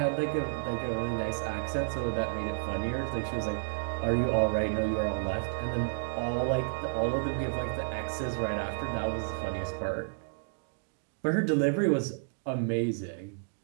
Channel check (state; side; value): silent; left; digital silence